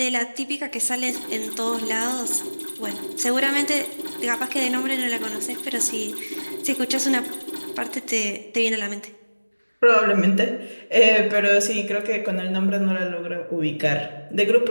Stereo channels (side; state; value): both; inverted; correlation -1.00